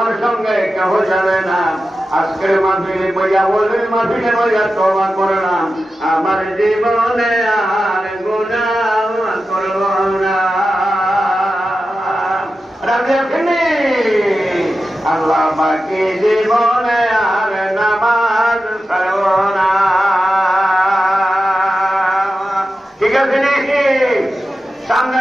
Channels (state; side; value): normal; both; correlation 0.92